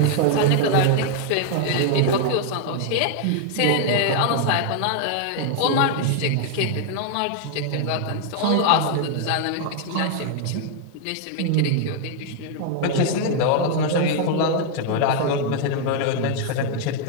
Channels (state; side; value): different; both; correlation 0.00